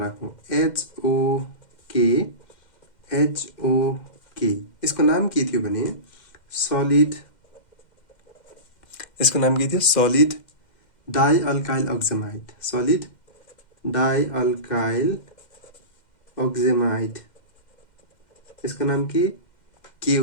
HOK। यसको नाम के थियो भने सलिड, यसको नाम के थियो सलिड डाइअल्काइल अक्जेमाइड, सलिड डाइअल्काइल अक्जेमाइड। यसको नाम के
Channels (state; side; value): late; right; 2.1 ms